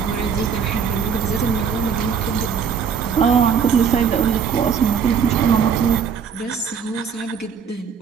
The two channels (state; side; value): quieter; left; 6.7 dB